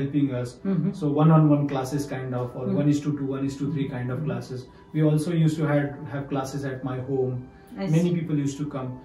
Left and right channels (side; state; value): both; identical; correlation 1.00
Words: us. So one-on-one classes kind of, or 1:2, 1:3 kind of classes. We also used to have classes at my home. Many people used to come,